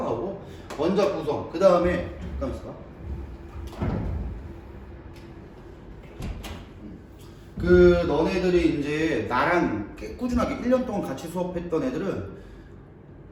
원자 구성, 그 다음에 잠깐만 있어봐. 그 너네들이 이제 나랑 꾸준하게 1년 동안 같이 수업했던 애들은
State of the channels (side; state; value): both; identical; correlation 1.00